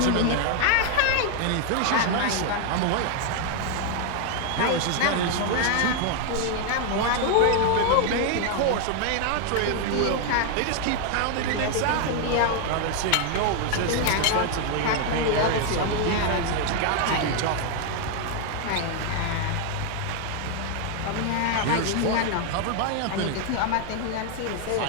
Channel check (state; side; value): different; both; correlation 0.00